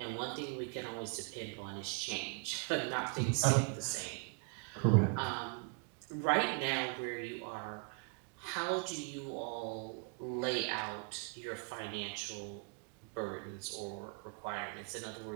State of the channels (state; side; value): quieter; left; 36.3 dB